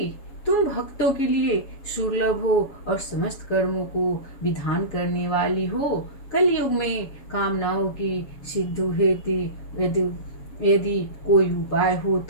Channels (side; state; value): right; late; 7.1 ms